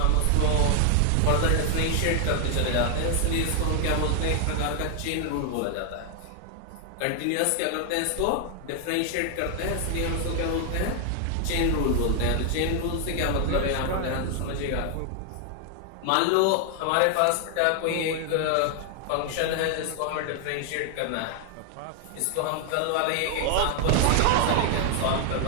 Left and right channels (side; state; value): both; different; correlation 0.00